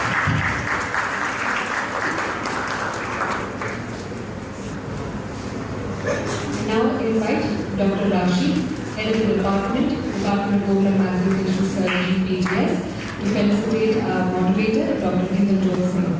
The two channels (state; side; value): identical; both; correlation 1.00